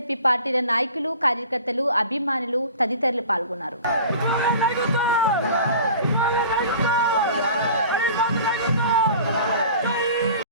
పార్టీల నాయకులు, కార్యకర్తలు, అభిమానులు తదితరులు పాల్గొన్నారు.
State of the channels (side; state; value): both; inverted; correlation -0.43